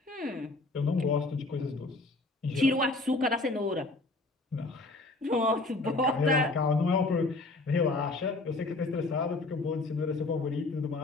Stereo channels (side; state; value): right; quieter; 3.2 dB